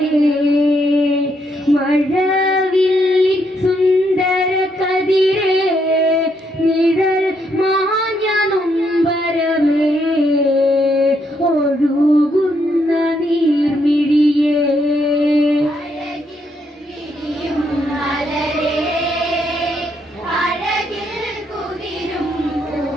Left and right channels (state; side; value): normal; both; correlation 0.75